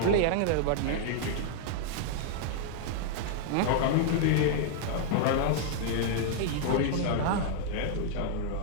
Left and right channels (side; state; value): both; different; correlation -0.01